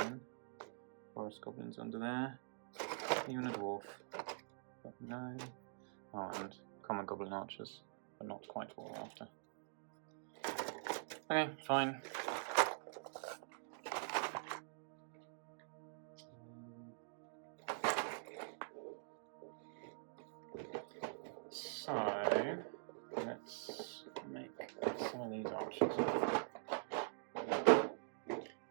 Forest goblins under there. Even a dwarf, but no. Oh, and common goblin archers, but not quite what we're after. Okay, fine. So, let's make some of these archers.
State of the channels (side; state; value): left; silent; digital silence